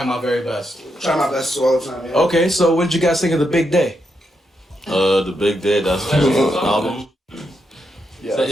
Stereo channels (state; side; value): normal; both; correlation 0.82